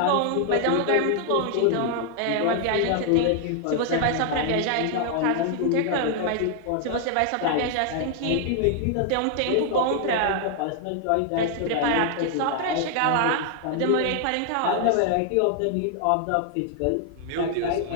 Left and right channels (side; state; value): both; different; correlation 0.00